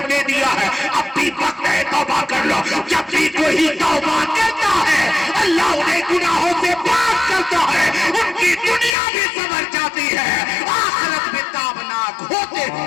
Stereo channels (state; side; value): drops out; right; at 9.0 s